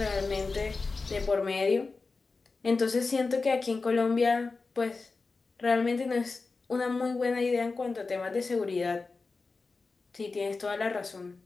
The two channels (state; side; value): quieter; right; 4.0 dB